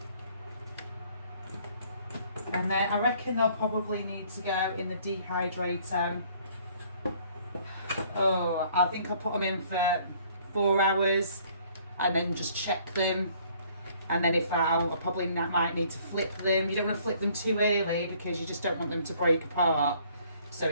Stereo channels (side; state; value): both; inverted; correlation -0.59